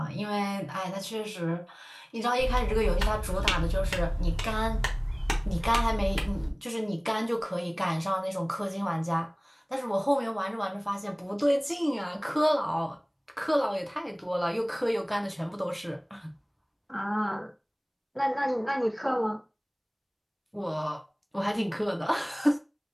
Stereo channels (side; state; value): both; identical; correlation 1.00